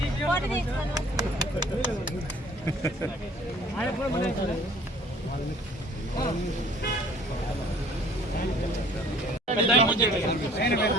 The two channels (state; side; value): normal; both; correlation 0.53